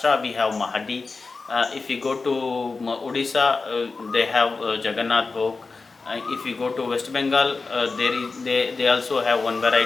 we have Mahadi, if we go to Odisha, they have Jagannath Bhog. If you go to West Bengal, they also have one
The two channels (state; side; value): quieter; right; 4.1 dB